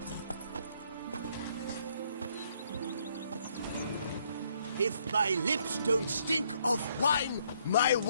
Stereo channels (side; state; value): both; inverted; correlation -0.69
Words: If my lips don't stink of wine, my